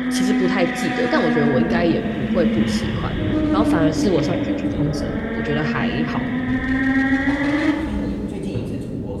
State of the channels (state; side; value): identical; both; correlation 1.00